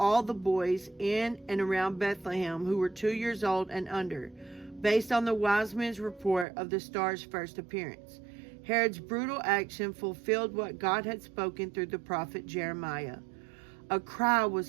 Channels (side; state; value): left; drops out; at 6.5 s